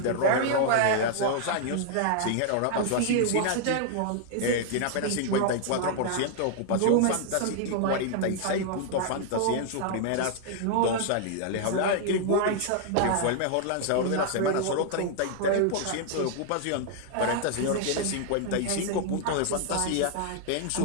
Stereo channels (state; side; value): different; both; correlation 0.00